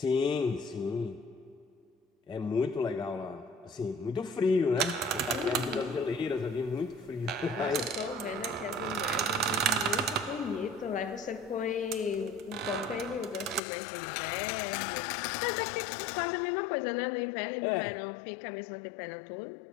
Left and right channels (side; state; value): right; drops out; at 13.6 s